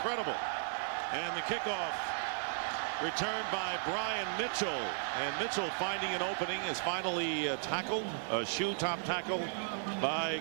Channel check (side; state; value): left; silent; digital silence